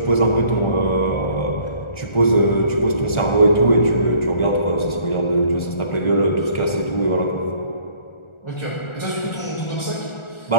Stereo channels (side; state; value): right; late; 1.4 ms